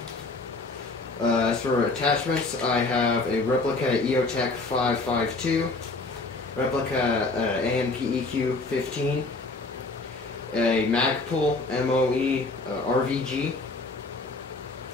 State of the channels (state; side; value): quieter; right; 3.4 dB